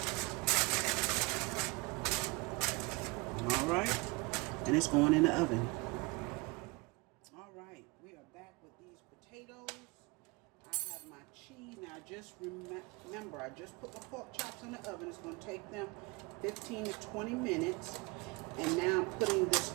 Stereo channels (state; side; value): quieter; left; 26.3 dB